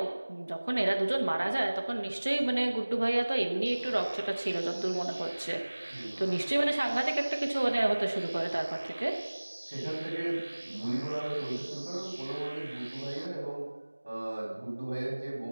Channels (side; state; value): both; inverted; correlation -1.00